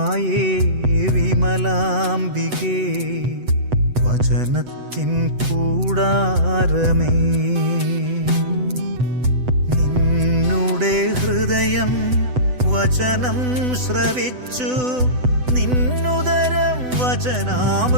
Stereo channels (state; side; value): late; left; 8.0 ms